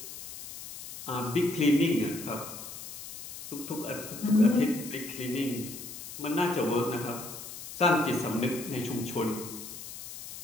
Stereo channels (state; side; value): noise; left; hiss, 11 dB below the sound